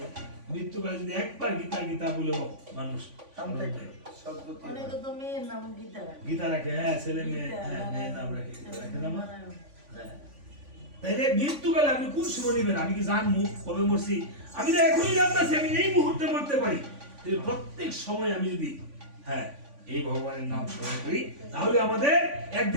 মৃত্যুকালে যদি একবার গীতা গীতা বলেও মানুষ স্মরণ করে, সদ্গতি অনেকে তো মেয়ের নাম গীতা রাখে। গীতা রাখে। হ্যাঁ, ছেলে মেয়ে, হ্যাঁ মেয়ের নাম রাখে, রাখে না মা? হ্যাঁ। তাইলে মৃত্যুকালে আপনি কোন সময় নেবেন? আমি কি জানবো কবে মরছি? আমি তো এখনই জানতেছি আমি এই মুহূর্তে মরতে পারি। প্রত্যেক সময় আমি যদি হ্যাঁ এই ভগবানের নাম স্মরণ করি, তাহলে আমাদের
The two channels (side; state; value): left; late; 3.5 ms